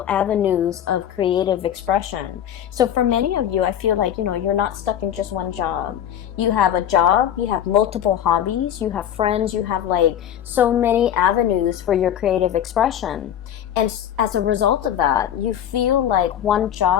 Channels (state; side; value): quieter; right; 10.2 dB